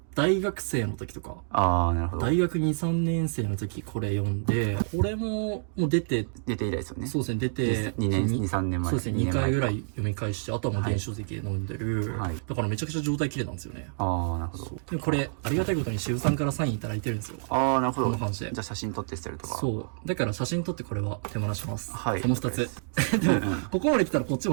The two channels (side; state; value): left; silent; digital silence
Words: 大学生の時とか。ああ、なるほど。大学2、3年生の時これ読んで、これも出て、出て以来ですよね。そうですね、出て、2年、2、3年前。そうですね、2回ぐらい読み返して、あとはもう電子書籍で飲んでる。はい。だからめちゃくちゃ状態綺麗なんですよね。ああ、なるほど。でもこれ、ありがたいことに渋さんからサインいただいてるんですよ。ああ、なるほど。この感じで。じゃあ写真撮って捨てるとか。そう。だから写真撮ってこれは手放します。はいこの2つ。でも、ここまで来たらこっち